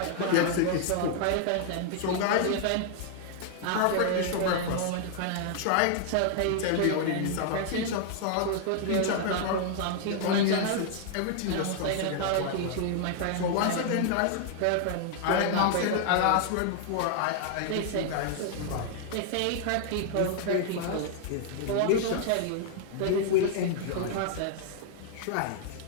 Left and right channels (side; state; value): both; different; correlation -0.01